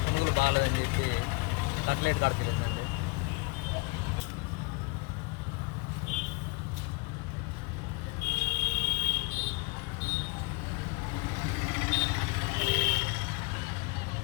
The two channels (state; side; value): quieter; right; 28.5 dB